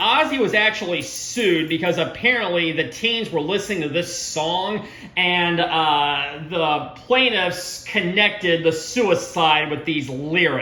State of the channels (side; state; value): both; identical; correlation 1.00